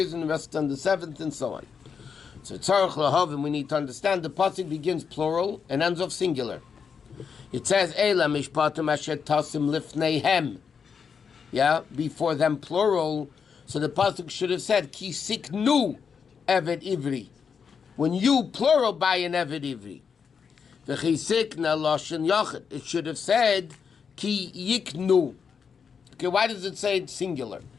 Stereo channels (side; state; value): right; quieter; 6.4 dB